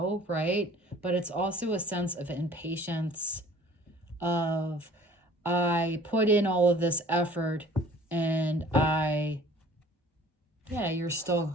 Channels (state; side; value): normal; both; correlation 0.50